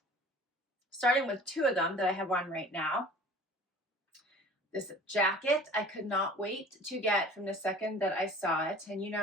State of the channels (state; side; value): normal; both; correlation 0.45